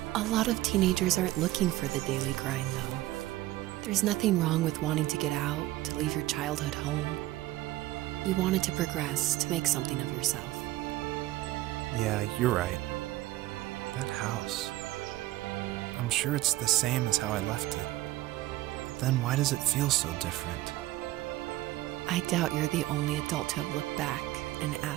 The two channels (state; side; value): quieter; left; 16.6 dB